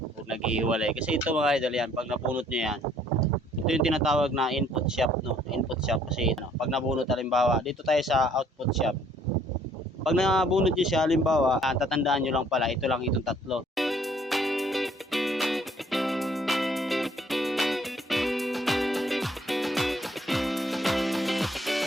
o naghihiwalay. Kasi ito mga idol yan, pag napunot nyo yan, ito yung tinatawag na input shop, no? Input shop kasi no, pag nabunot halimbawa, dito tayo sa output shop. Pag nabunot nyo siya halimbawa, tatandaan nyo lang pala, ito lang itong tatlo.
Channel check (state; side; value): normal; both; correlation 0.61